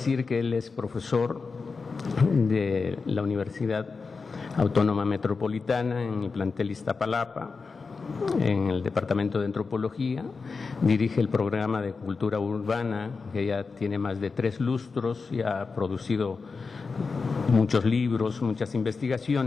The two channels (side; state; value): right; quieter; 4.6 dB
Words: que él es profesor de la Universidad Autónoma Metropolitana en el plantel Iztapalapa, en el Departamento de Antropología, dirige el programa de Cultura Urbana, que ya tiene más de 3 lustros y ha producido muchos libros, muchas